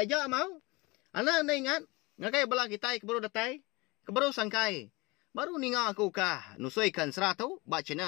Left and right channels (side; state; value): right; quieter; 24.6 dB